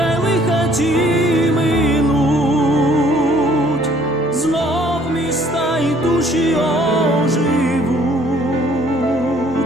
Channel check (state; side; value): normal; both; correlation 0.60